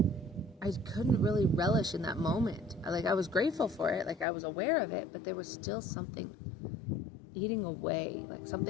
I couldn't really relish in that moment. I was grateful for it, I was aware of it, but there was still something eating away,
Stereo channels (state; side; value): drops out; right; at 4.2 s